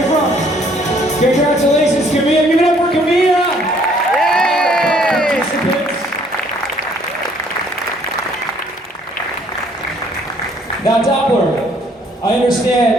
from? Congratulations, Camilla. Give it up for Camilla! Yay! Now, Doppler, I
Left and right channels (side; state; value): both; normal; correlation 0.62